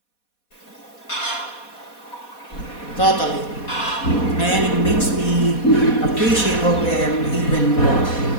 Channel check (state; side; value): late; right; 4.2 ms